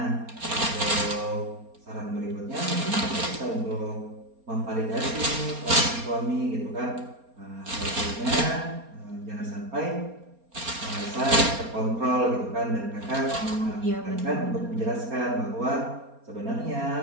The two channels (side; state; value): left; late; 4.3 ms